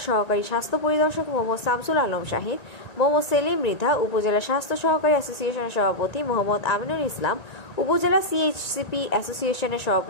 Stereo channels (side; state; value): right; late; 2.0 ms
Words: সহকারী স্বাস্থ্য পরিদর্শক মোহাম্মদ শামসুল আলম শাহিন, মোহাম্মদ সেলিম মৃধা, উপজেলা স্বাস্থ্য সহকারী অ্যাসোসিয়েশনের সভাপতি মোহাম্মদ আমিনুল ইসলাম, উপজেলা সিএইচসিপি অ্যাসোসিয়েশনের